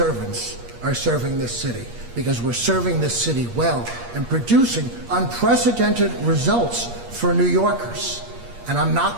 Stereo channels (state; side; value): late; left; 8.5 ms